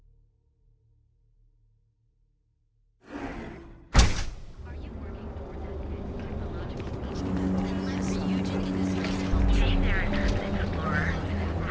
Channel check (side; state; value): both; identical; correlation 1.00